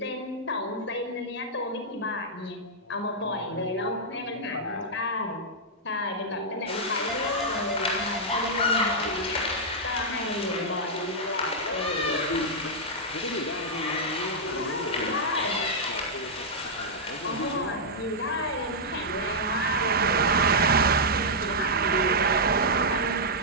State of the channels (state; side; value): normal; both; correlation -0.07